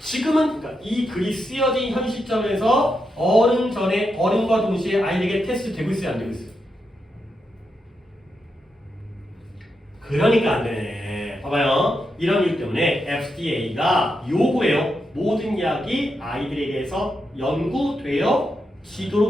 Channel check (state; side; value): normal; both; correlation 0.85